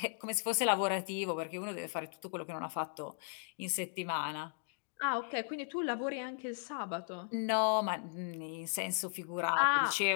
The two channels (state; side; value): silent; right; digital silence